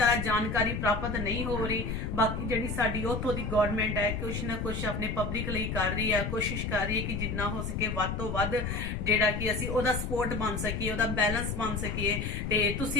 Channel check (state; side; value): noise; left; rumble, 3 dB below the sound